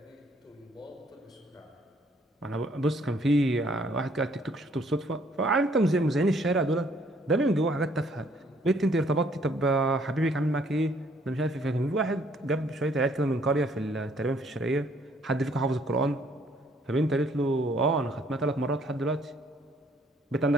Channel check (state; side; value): normal; both; correlation 0.64